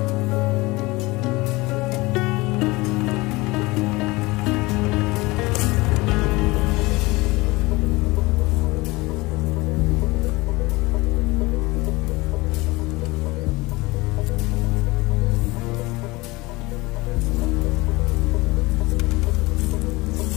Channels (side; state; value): right; quieter; 22.3 dB